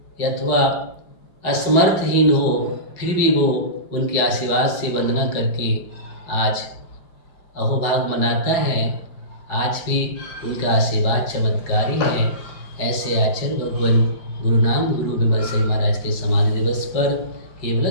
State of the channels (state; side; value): late; right; 5.1 ms